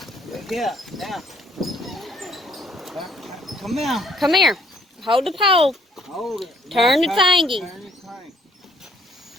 Look here, now. Come here. Come here. Hold the pole. Hold it. Turn the Now, thingy. Turn the crank.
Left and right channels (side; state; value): both; normal; correlation 0.64